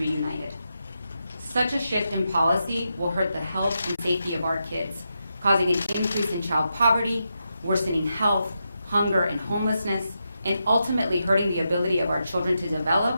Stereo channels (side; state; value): both; inverted; correlation -0.86